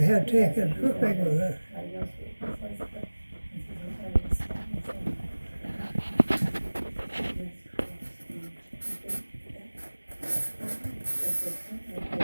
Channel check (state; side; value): inverted; both; correlation -1.00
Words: had taken. How big was it?